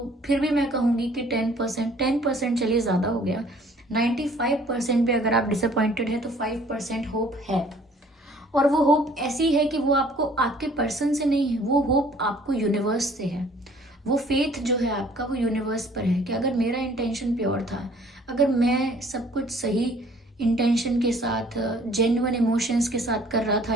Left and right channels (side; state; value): both; normal; correlation 0.56